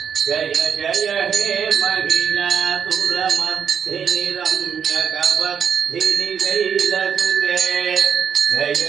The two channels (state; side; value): quieter; left; 7.5 dB